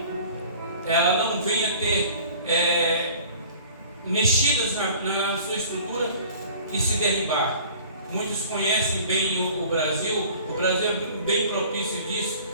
ela não venha ter mexidas na sua estrutura e se derribar. Muitos conhecem bem o Brasil. O Brasil é bem propício disso,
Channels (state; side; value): inverted; both; correlation -0.47